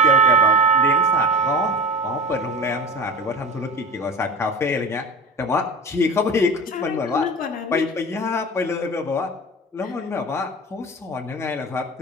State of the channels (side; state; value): both; normal; correlation 0.32